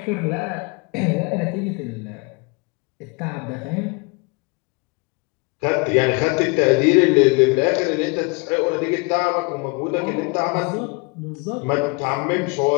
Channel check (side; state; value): right; quieter; 29.3 dB